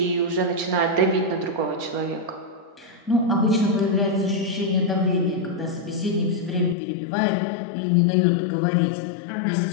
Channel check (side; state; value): right; drops out; at 6.8 s